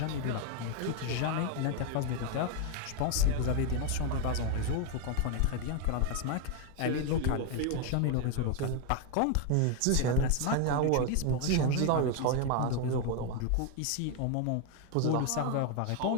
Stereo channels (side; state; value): both; different; correlation 0.01